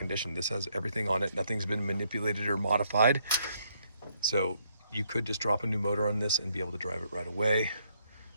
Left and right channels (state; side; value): inverted; both; correlation -0.72